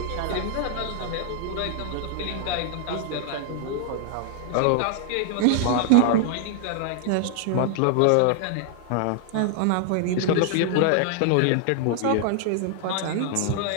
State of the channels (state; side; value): different; both; correlation 0.00